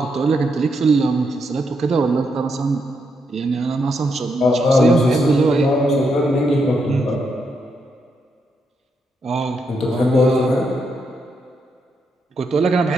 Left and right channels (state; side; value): normal; both; correlation 0.80